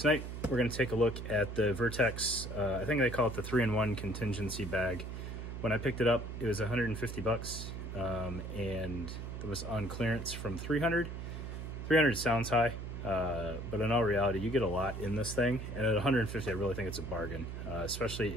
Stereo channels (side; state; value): right; noise; hum, 7 dB below the sound